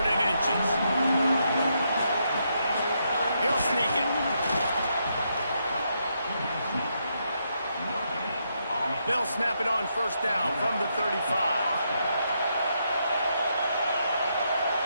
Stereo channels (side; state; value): both; inverted; correlation -0.79